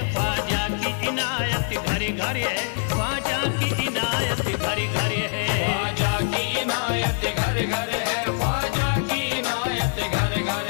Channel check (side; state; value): right; silent; digital silence